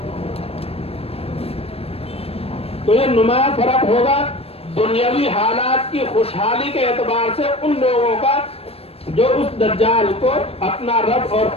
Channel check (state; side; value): late; right; 0.28 ms